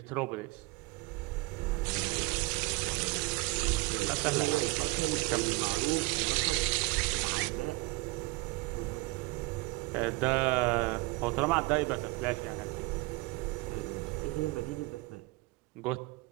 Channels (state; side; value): quieter; left; 23.9 dB